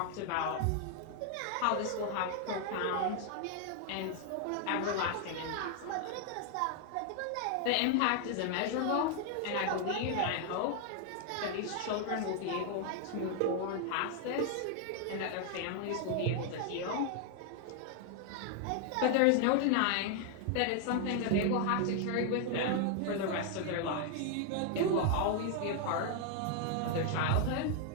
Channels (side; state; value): both; different; correlation 0.00